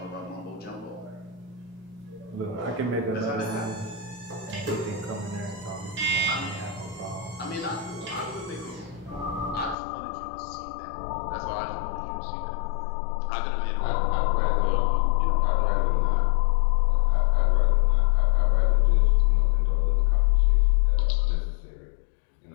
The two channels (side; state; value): right; drops out; at 9.8 s